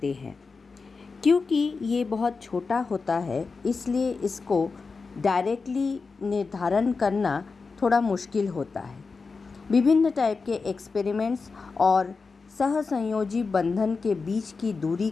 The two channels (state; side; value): quieter; right; 4.5 dB